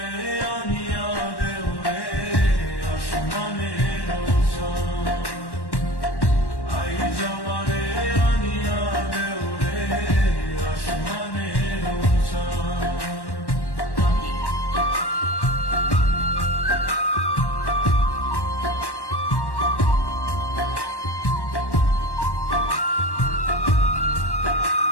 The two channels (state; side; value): late; right; 1.1 ms